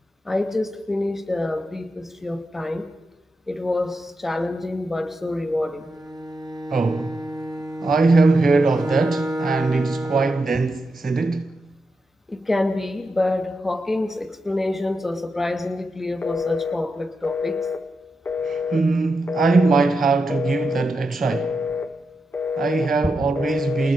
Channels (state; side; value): normal; both; correlation 0.87